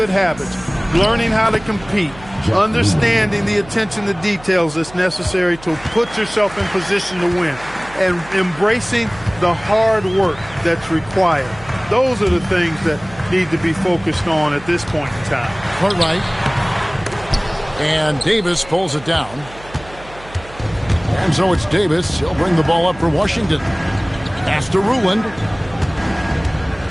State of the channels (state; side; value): noise; right; hum, 19 dB below the sound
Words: habits, learning how to compete, understanding the attention to details that's necessary to put yourself in position to win, and embracing the hard work that's required. Those are the things that need to be focused on at this point in time. Cartwright. And Davis pulls it down. And so it's Davis. He'll bring the ball up for Washington. Pass to Ruland.